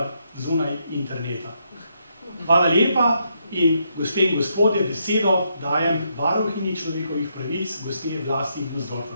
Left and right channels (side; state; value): both; inverted; correlation -0.77